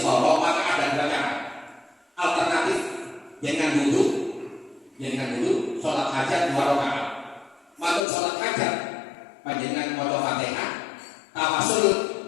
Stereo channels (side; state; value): right; drops out; at 8.1 s